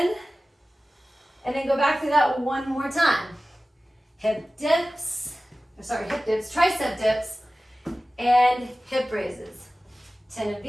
and then go back through that one more time. Hip dips, tricep dips, and hip raises. 10 of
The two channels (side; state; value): both; normal; correlation 0.96